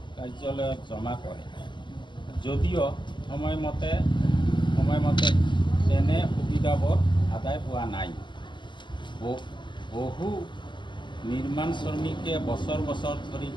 কাৰ্যালয়ত জমা কৰে যদিও সময়মতে তেনে সুবিধাবোৰ আদায় হোৱা নাই। বহু নিৰ্মাণ শ্ৰমিকে বছৰ ধৰি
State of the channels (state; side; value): late; right; 0.22 ms